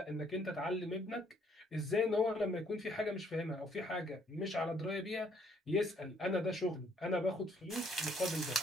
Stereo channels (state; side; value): normal; both; correlation 0.65